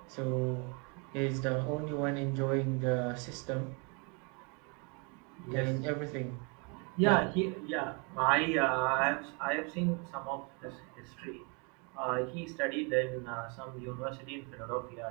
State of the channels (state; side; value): quieter; left; 33.5 dB